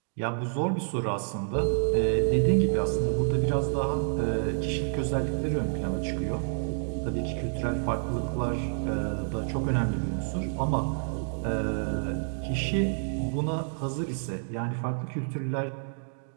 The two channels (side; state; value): left; silent; digital silence